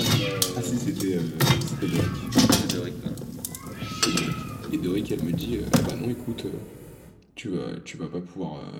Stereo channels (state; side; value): identical; both; correlation 1.00